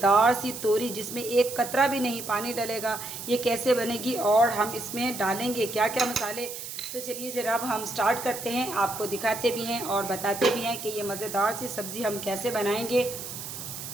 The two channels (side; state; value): right; noise; hiss, 9 dB below the sound